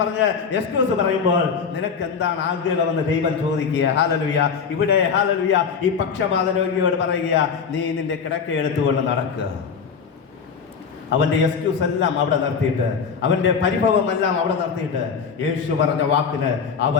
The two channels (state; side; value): quieter; right; 6.1 dB